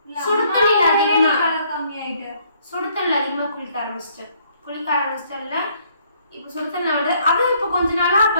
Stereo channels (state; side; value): inverted; both; correlation -0.65